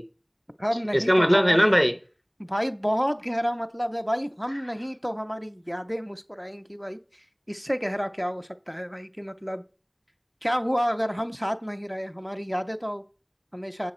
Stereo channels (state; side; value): identical; both; correlation 1.00